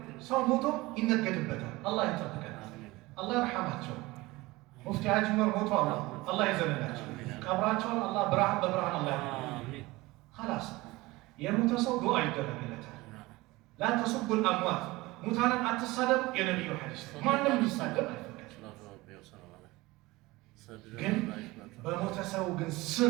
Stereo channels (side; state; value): left; quieter; 20.8 dB